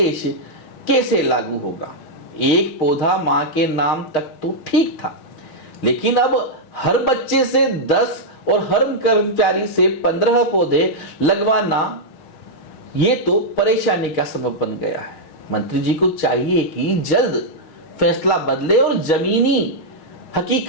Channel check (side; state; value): right; late; 6.4 ms